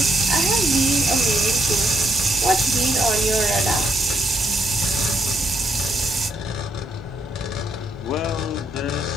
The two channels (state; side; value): normal; both; correlation 0.74